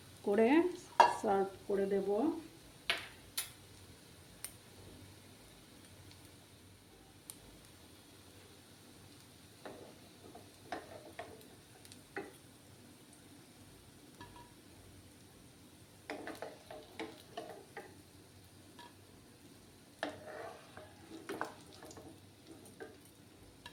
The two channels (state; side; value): identical; both; correlation 1.00